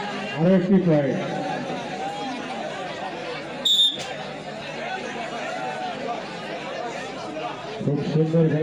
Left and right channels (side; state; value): both; identical; correlation 1.00